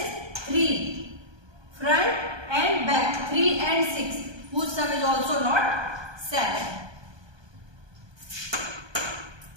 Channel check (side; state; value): left; late; 1.2 ms